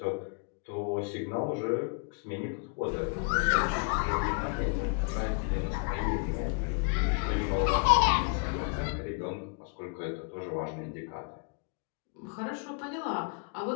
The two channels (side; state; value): right; quieter; 39.1 dB